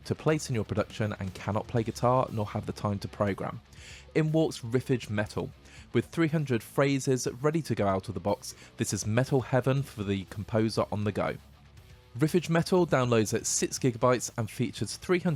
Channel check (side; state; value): both; identical; correlation 1.00